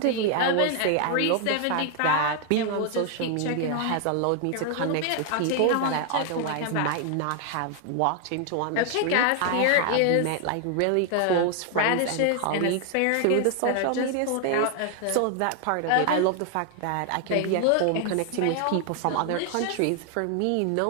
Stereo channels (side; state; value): both; different; correlation 0.00